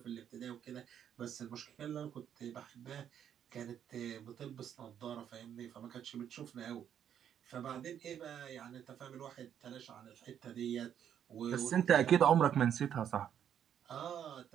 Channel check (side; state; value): left; quieter; 9.3 dB